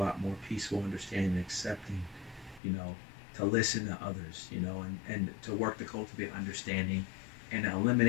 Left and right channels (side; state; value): right; drops out; at 2.6 s